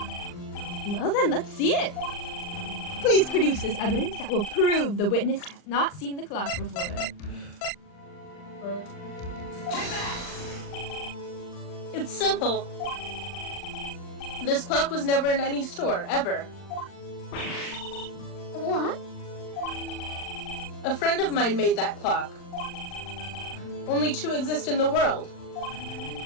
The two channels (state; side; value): late; right; 39 ms